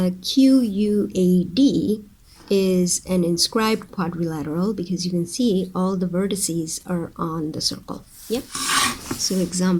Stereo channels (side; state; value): both; identical; correlation 1.00